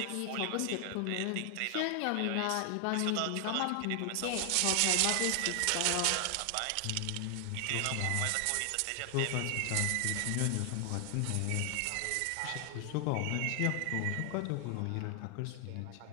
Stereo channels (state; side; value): different; both; correlation 0.00